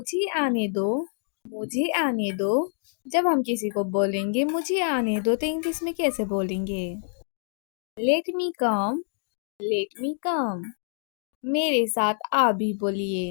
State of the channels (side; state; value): right; silent; digital silence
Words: आने दो। मुझे आने दो। जब हम किसी को बोलेंगे मुझे आने दो तो इंग्लिश में कैसे बोलेंगे? लेट मी कम। लेट मी कम। मेरे साथ आप भी